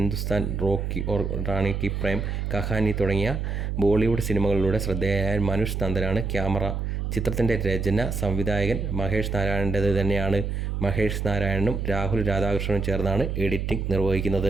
റോക്കി ഓർ റാണി കി പ്രേം കഹാനി തുടങ്ങിയ ബോളിവുഡ് സിനിമകളിലൂടെ ശ്രദ്ധേയനായ മനുഷ് നന്ദനാണ് ക്യാമറ. ചിത്രത്തിൻ്റെ രചന, സംവിധായകൻ മഹേഷ് നാരായണൻ്റേത് തന്നെയാണ്. മഹേഷ് നാരായണനും രാഹുൽ രാധാകൃഷ്ണനും ചേർന്നാണ് എഡിറ്റിംഗ്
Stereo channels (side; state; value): right; noise; hum, 2 dB below the sound